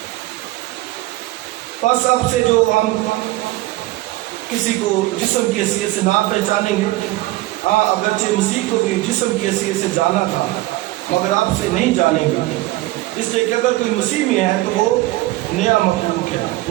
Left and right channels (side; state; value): left; quieter; 18.1 dB